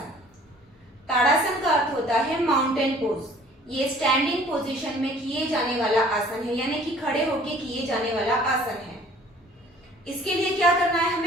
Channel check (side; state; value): both; normal; correlation 0.52